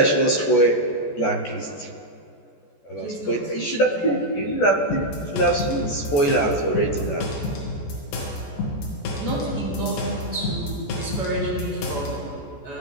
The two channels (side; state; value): right; late; 14 ms